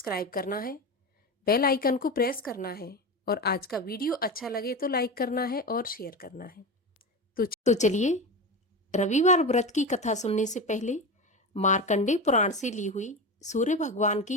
करना है, बेल आइकन को प्रेस करना है और आज का वीडियो अच्छा लगे तो लाइक करना है और शेयर करना है। तो चलिए रविवार व्रत की कथा सुनने से पहले मार्कंडेय पुराण से ली हुई सूर्य भगवान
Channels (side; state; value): both; normal; correlation 0.22